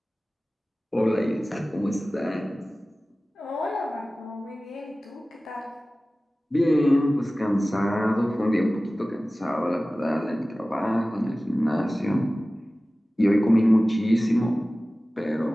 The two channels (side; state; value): both; normal; correlation 0.97